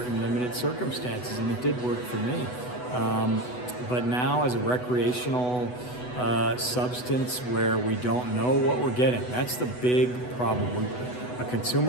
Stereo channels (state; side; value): late; right; 8.1 ms